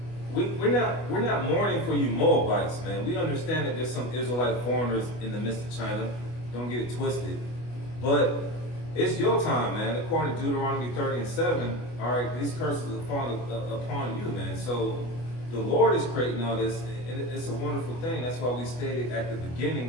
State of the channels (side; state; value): right; late; 25 ms